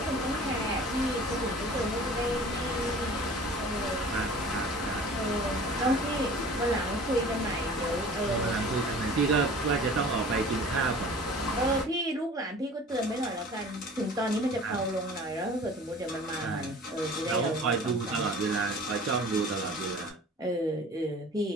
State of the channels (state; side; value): normal; both; correlation 0.44